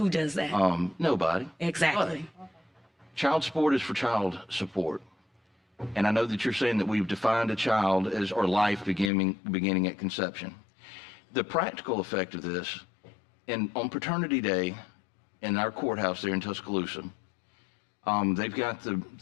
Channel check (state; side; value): drops out; right; at 9.1 s